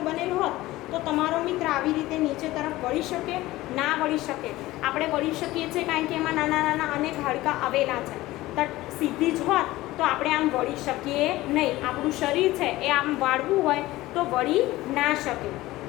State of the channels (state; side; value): quieter; right; 17.7 dB